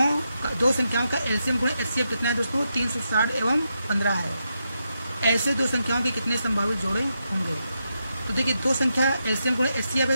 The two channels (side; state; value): both; inverted; correlation -0.85